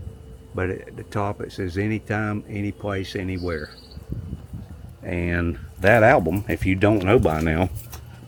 But at the top it says anytime, any place, anywhere. And that album, if you don't know by now,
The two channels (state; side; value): identical; both; correlation 1.00